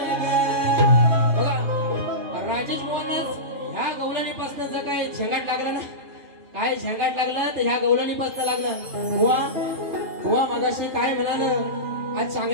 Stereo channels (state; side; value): late; left; 3.3 ms